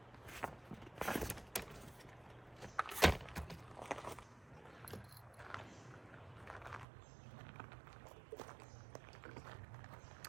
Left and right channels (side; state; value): left; drops out; at 6.9 s